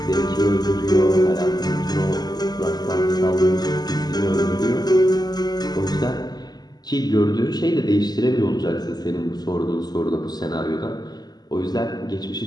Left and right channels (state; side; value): late; right; 0.20 ms